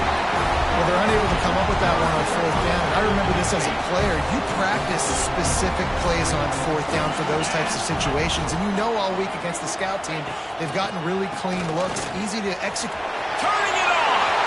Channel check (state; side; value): identical; both; correlation 1.00